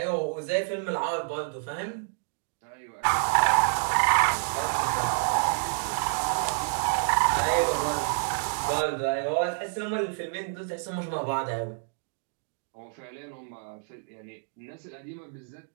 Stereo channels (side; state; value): left; silent; digital silence